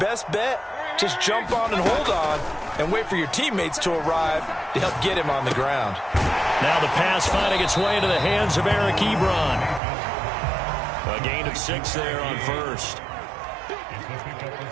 bet, just jump on and hold on and wait for your teammates to arrive to help get him on the ground. Now the pass finding its way into the hands of Eric Ebron. A gain of 6 there on first.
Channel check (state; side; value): drops out; left; at 9.8 s